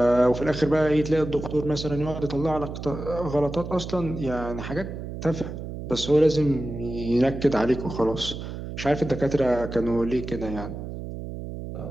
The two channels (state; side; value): noise; right; hum, 8 dB below the sound